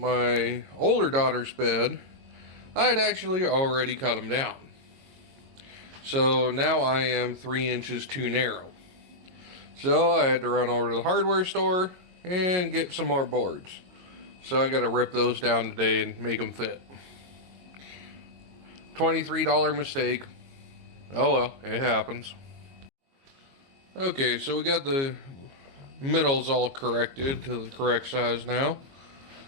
older daughter's bed, I'd actually already cut them down. So now I am 3 inches too narrow. So I had to run over to the hardware store and get some more boards. So I got to rip those down today and make them fit. $23 mistake. Oh well, it happens. Okay, so we got the middles all corrected to the correct size now.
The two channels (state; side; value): late; left; 22 ms